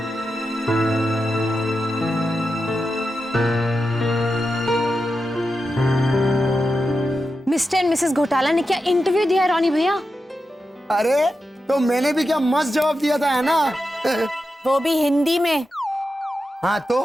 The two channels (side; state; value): both; normal; correlation 0.90